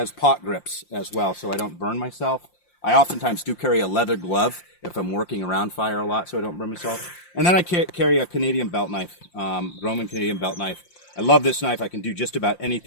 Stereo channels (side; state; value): right; late; 5.7 ms